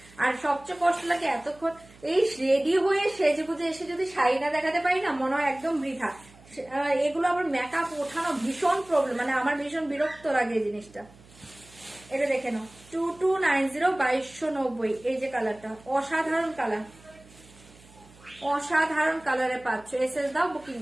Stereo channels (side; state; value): right; noise; hum, 24 dB below the sound